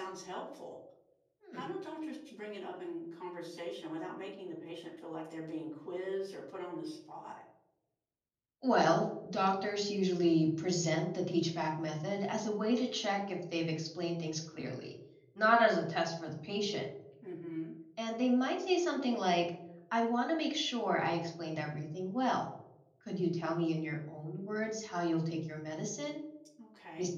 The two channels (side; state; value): both; identical; correlation 1.00